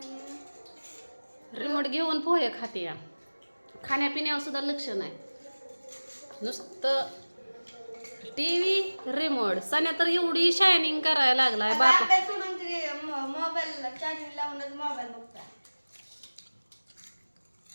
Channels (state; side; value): inverted; both; correlation -1.00